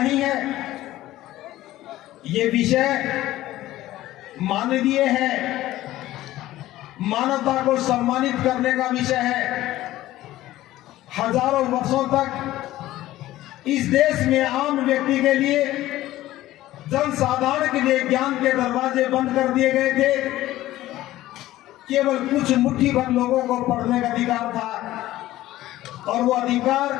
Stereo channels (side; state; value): right; quieter; 15.4 dB